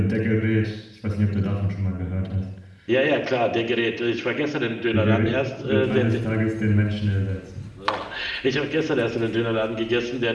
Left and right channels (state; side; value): identical; both; correlation 1.00